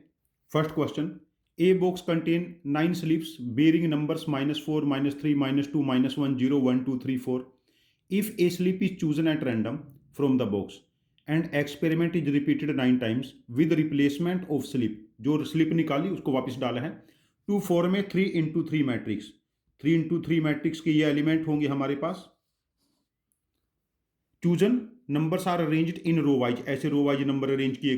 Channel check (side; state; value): both; identical; correlation 1.00